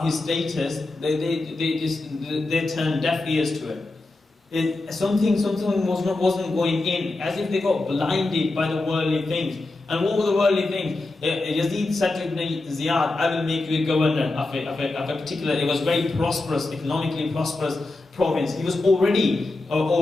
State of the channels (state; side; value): quieter; right; 3.1 dB